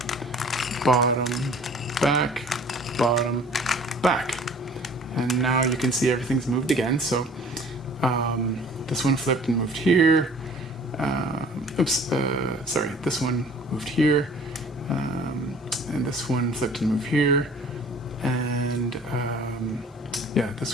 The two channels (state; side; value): normal; both; correlation 0.50